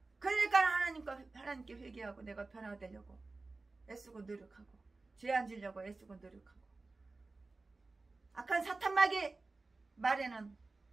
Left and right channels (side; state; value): left; quieter; 3.5 dB